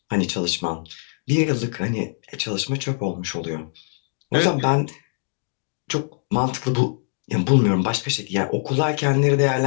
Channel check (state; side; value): silent; right; digital silence